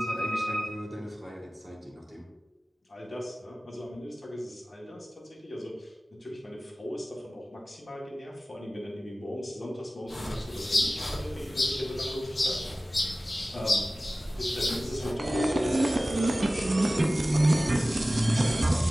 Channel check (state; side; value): normal; both; correlation 0.97